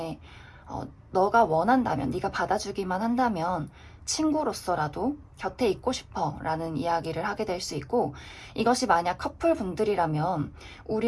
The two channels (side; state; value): both; identical; correlation 1.00